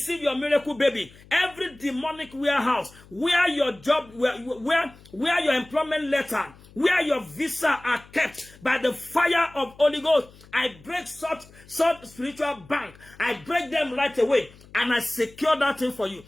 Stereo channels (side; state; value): left; noise; hum, 24 dB below the sound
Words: your miracle baby. Every demonic warehouse where your job, where your employment letter, where your visa are kept, by the fire of Holy Ghost, I break such spiritual bank. I break them right away, and I secure that thing for you